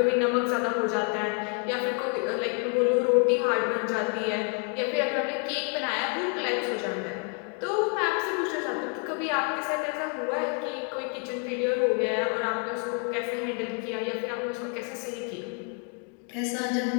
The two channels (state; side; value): quieter; right; 38.7 dB